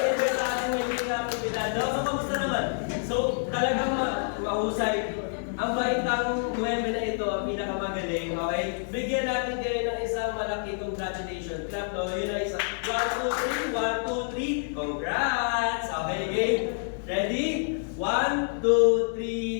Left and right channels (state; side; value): silent; right; 59 dB below the other